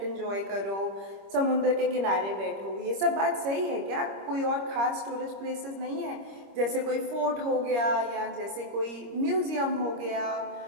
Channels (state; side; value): late; left; 25 ms